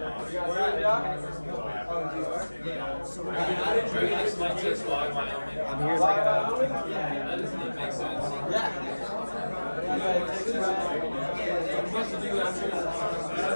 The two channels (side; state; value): both; inverted; correlation -1.00